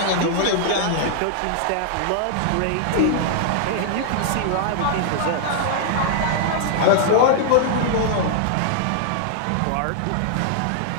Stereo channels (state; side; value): different; both; correlation -0.01